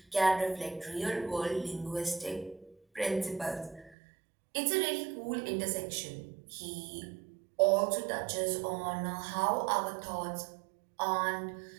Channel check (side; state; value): left; drops out; at 4.0 s